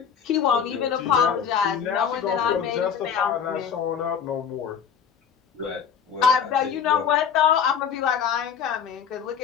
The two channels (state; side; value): quieter; right; 7.5 dB